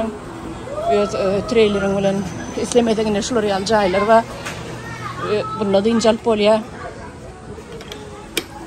trailerin ulan istemediğine şuraya alacaklar var. Bunda dinçal polya.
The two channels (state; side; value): identical; both; correlation 1.00